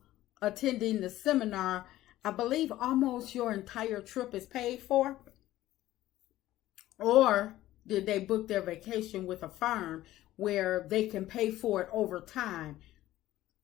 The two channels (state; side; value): quieter; right; 14.9 dB